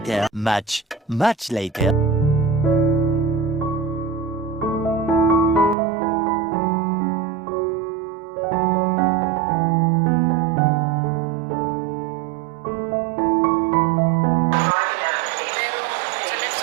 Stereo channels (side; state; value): left; drops out; at 5.8 s